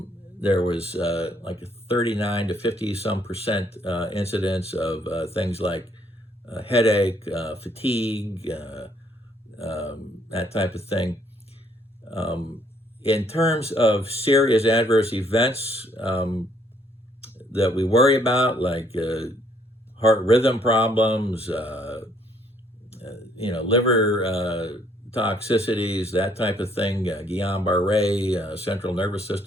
There was like a 39 to 50 some percent incidence of things like headache, fatigue, that type of thing. In terms of serious adverse events that we worry about, like heart rhythm problems, liver toxicities, that type of thing, Guillain-Barré, central nervous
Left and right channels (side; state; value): both; normal; correlation 0.67